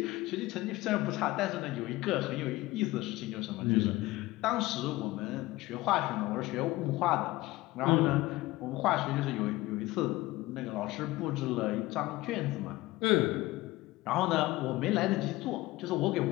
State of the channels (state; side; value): quieter; right; 18.9 dB